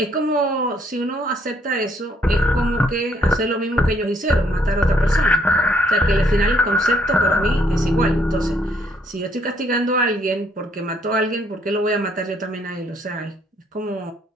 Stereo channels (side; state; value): both; normal; correlation 0.68